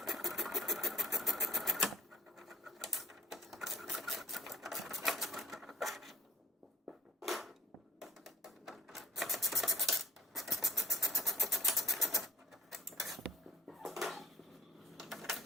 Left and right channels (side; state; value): both; normal; correlation 0.56